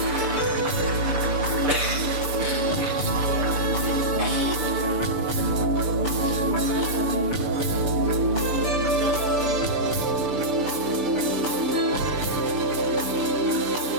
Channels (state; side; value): late; left; 6.8 ms